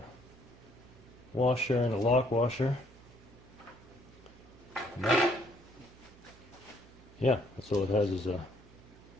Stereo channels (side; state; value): right; noise; hum, 23 dB below the sound